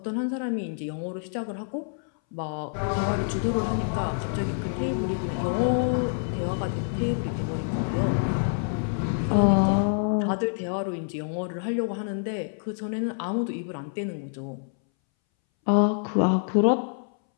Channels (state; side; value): silent; right; 60 dB below the other